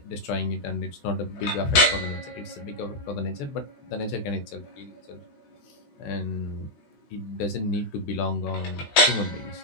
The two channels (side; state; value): right; late; 14 ms